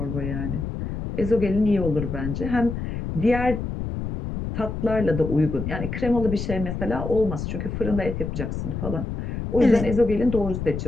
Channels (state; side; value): noise; left; rumble, 5 dB below the sound